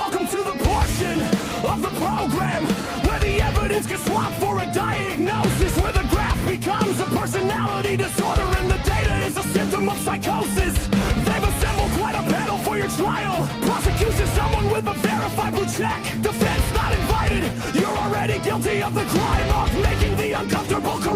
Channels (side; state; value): both; identical; correlation 1.00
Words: to the portion of the program where the evidence gets swapped for a diagnosis, where the graph becomes a personality disorder and the data is a symptom of psychosis. They've assembled quite a panel for your trial. Prosecution, someone with a verified blue check. Defense not invited. You're already guilty of the crime of making the uncomfortable